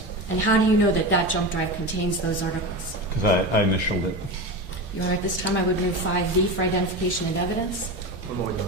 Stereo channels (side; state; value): both; normal; correlation 0.23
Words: And how do you know that that jump drive contains those articles? because I initialed it. You're right, this time I would move 5V for identification and evidence. One more, Your